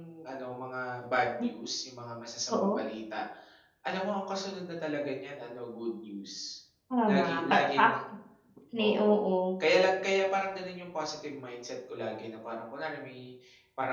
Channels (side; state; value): both; identical; correlation 1.00